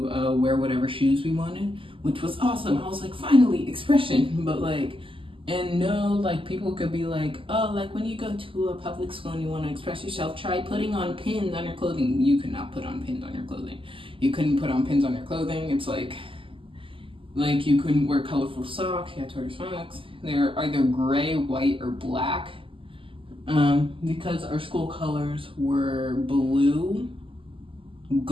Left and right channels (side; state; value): left; late; 0.25 ms